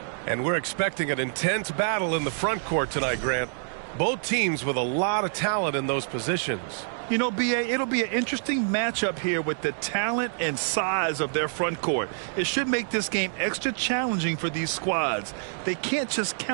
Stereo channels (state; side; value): silent; left; digital silence